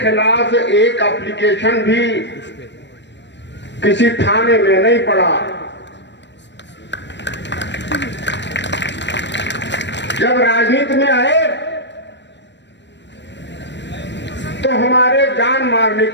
एक एप्लीकेशन भी किसी थाने में नहीं पड़ा। जब राजनीति में आए तो हमारे जान मारने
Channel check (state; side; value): late; right; 0.52 ms